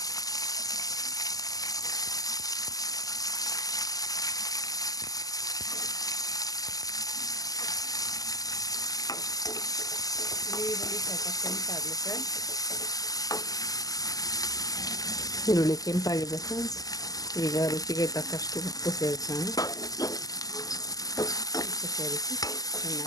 ಈರುಳ್ಳಿ ಸ್ವಲ್ಪ ಕೆಂಪಾಗಲಿ ಫ್ರೆಂಡ್ಸ್. ಈರುಳ್ಳಿ ಕೆಂಪಾಗಿದೆ ಫ್ರೆಂಡ್ಸ್. ಈಗ ರುಚಿಗೆ ತಕ್ಕಷ್ಟು ಉಪ್ಪು ಸೇರಿಸೋಣ. ಉಪ್ಪು ಸೇರಿಸಿ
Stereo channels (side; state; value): right; late; 0.17 ms